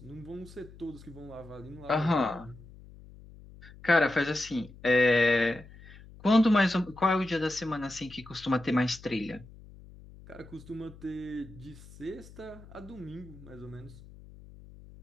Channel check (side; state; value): left; noise; hum, 19 dB below the sound